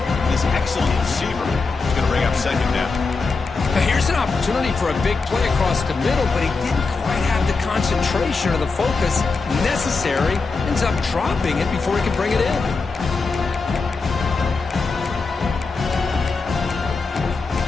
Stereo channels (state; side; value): quieter; right; 4.3 dB